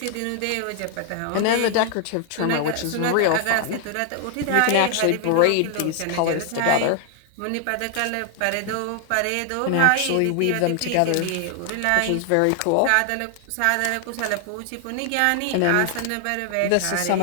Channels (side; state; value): both; different; correlation 0.00